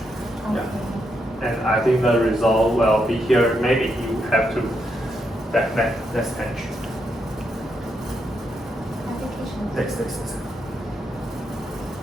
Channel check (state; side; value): normal; both; correlation 0.80